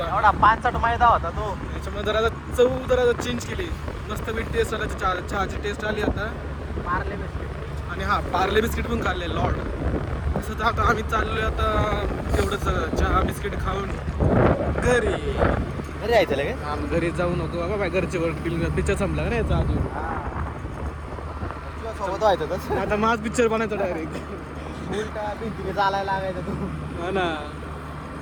एवढा 5 मैदा होता तो. त्याच्यामुळे जरा चव जरा चेंज केली. मस्त मी टेस्ट आला, चहाची टेस्ट आली आता. पार्ले बिस्किट आणि हा पार्ले बिस्किट पण खाल्ले लॉर्ड. तसं तर आता आम्ही चाललोय आता तेवढंच चहा बिस्किट खाऊन घरी यायचं लगे. हा मग घरी जाऊ नको बाबा, बाय घरचे पिक्चर संपला का यायचा अजून. सोबत व्हायचं तसं. आता माझ पिक्चर बनायचा डायरेक्ट. उलटा भिंतीने चालायला लागायचं तू. हा ना.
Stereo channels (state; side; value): identical; both; correlation 1.00